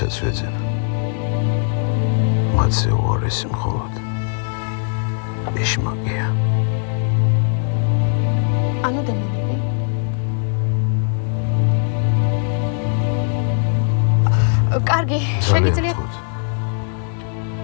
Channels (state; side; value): silent; right; 55 dB below the other